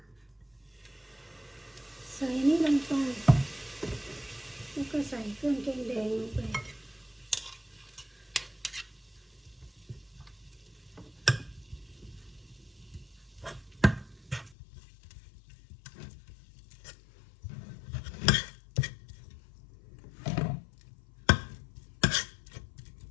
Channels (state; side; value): drops out; right; at 14.6 s